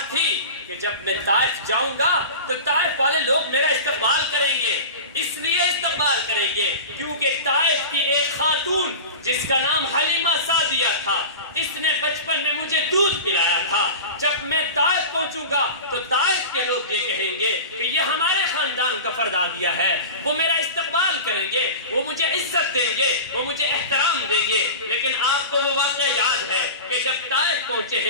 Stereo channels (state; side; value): inverted; both; correlation -0.31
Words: تھی کہ جب میں طائف جاؤں گا تو طائف والے لوگ میرا استقبال کریں گے، اس لیے استقبال کریں گے کیونکہ طائف کی ایک خاتون جس کا نام حلیمہ سعدیہ تھا، اس نے بچپن میں مجھے دودھ پلایا تھا، جب میں طائف پہنچوں گا تو طائف کے لوگ یہ کہیں گے کہ یہ ہمارے خاندان کا فرد آ گیا ہے، وہ میرا استقبال کریں گے، وہ مجھے عزت دیں گے، وہ مجھے احترام دیں گے۔ لیکن آپ کو وہ واقعہ یاد ہے کہ جب طائف پہنچے